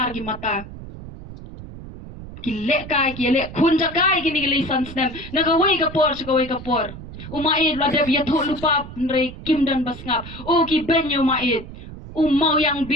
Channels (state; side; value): noise; right; rumble, 13 dB below the sound